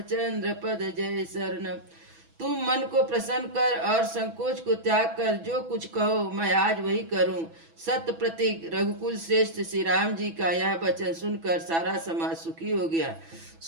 पद जय शरणम। तुम मन को प्रसन्न कर और संकोच को त्याग कर जो कुछ कहो मैं आज वही करूं। सत्य प्रतीक रघुकुल श्रेष्ठ श्री राम जी का यह वचन सुनकर सारा समाज सुखी हो गया।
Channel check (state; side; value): late; left; 6.1 ms